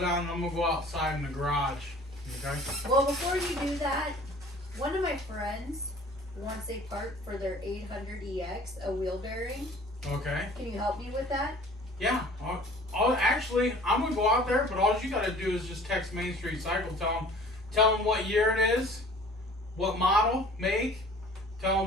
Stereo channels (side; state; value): both; normal; correlation 0.48